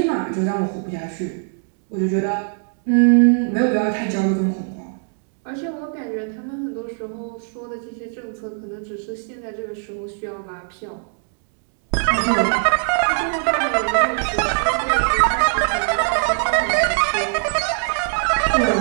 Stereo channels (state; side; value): silent; left; 61 dB below the other